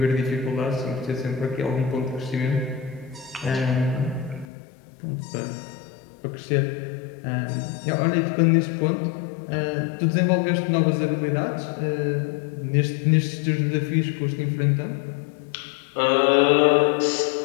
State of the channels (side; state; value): right; drops out; at 4.5 s